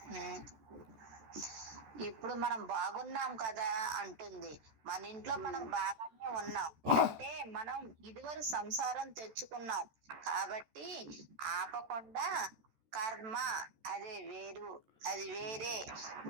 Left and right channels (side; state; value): left; late; 13 ms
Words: ఇప్పుడు మనం బాగున్నాం కదా అంటుంది. మన ఇంట్లో మనం బాగానే ఉన్నాం అంటే మనం ఇదివరకు సంసారం తెచ్చుకున్నాం కాబట్టి ఆపకుండా కర్మ అది వేరే